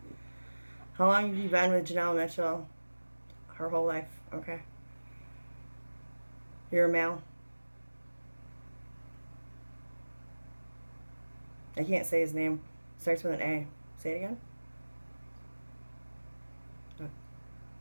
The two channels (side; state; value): both; inverted; correlation -1.00